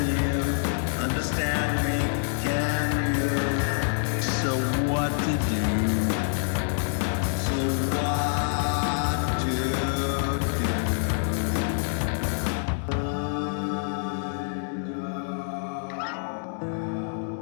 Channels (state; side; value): silent; right; 61 dB below the other